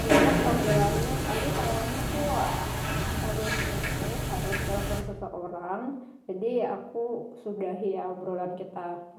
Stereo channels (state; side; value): identical; both; correlation 1.00